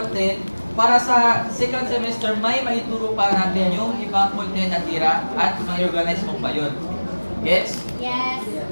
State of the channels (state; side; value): inverted; both; correlation -1.00